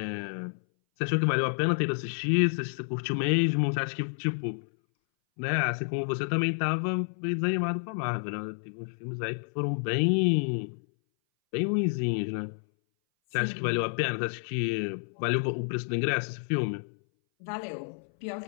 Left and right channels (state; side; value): silent; right; 58 dB below the other